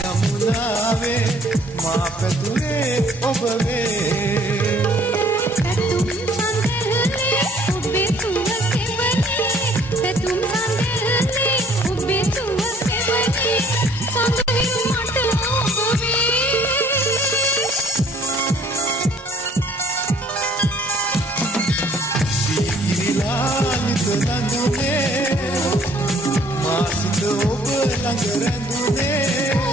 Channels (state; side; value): normal; both; correlation 0.59